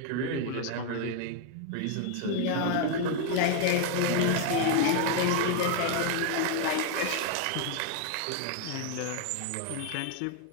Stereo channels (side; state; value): both; different; correlation 0.00